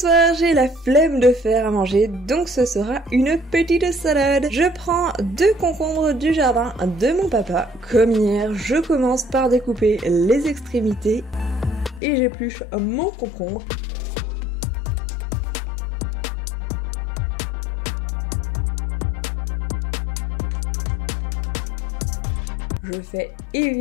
j'ai la flemme de faire à manger, donc ce sera une petite salade. Je prends 2 concombres du jardin de mon papa. Comme hier, je commence par découper les extrémités et j'épluche mon concombre. Je fais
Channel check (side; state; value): right; drops out; at 12.0 s